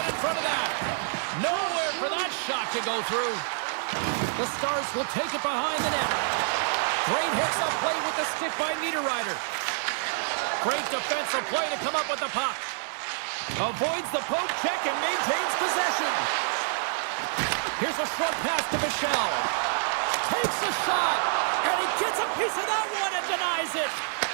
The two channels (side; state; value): left; silent; digital silence